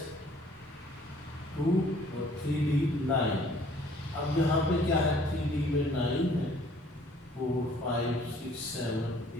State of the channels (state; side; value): normal; both; correlation 0.57